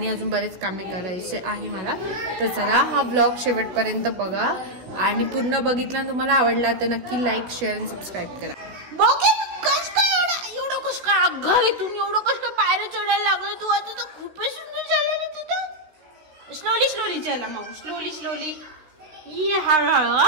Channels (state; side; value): late; left; 16 ms